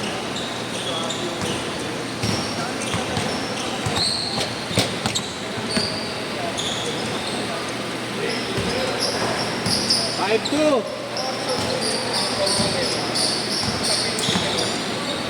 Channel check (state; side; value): identical; both; correlation 1.00